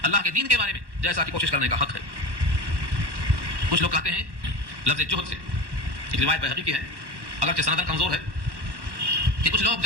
اللہ کے دین کے بارے میں، جیسا کہ کوشش کرنے کا حق ہے۔ کچھ لوگ کہتے ہیں لفظ جہد سے، ایک روایت بہقی کی ہے اگرچہ سندن کمزور ہے، کہ کچھ لوگ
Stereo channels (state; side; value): late; left; 1.1 ms